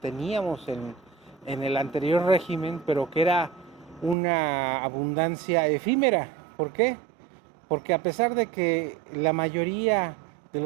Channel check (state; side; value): drops out; left; at 4.2 s